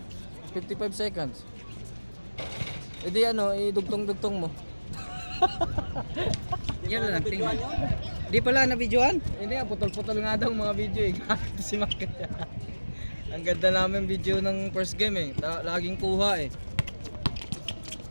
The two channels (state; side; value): inverted; both; correlation -1.00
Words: 55 seconds. E di ano, idugtong-dugtong mo. Yan lang tingnan. Di pala na videoan? Hindi nga, putol-putol nga daw mga video eh. Si Mark. Ang ganda namin video ng first game eh. Laging kuha eh.